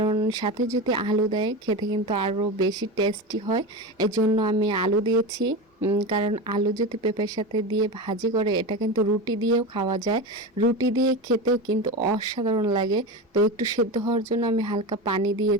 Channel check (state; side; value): normal; both; correlation 0.23